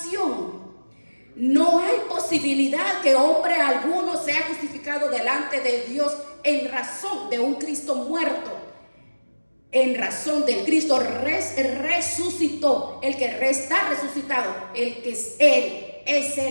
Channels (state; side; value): inverted; both; correlation -1.00